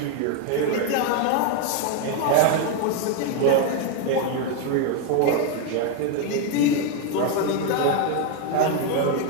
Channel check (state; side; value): different; both; correlation 0.01